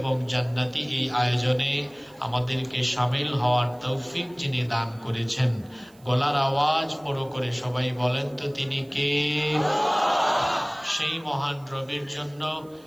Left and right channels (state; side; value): noise; right; hiss, 30 dB below the sound